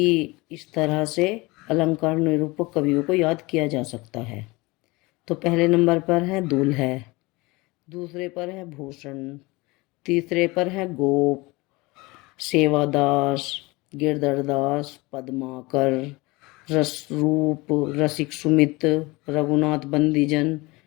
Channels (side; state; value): right; quieter; 23.4 dB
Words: इस तरह से अलंकार निरूपक कवियों को याद किया जा सकता है। तो पहले नंबर पर है दूल्हा, दूसरे पर है भूषण, तीसरे पर है गोप, सेवादास, गिरधरदास, पद्माकर, रसरूप, रसिक सुमित, रघुनाथ बंदीजन,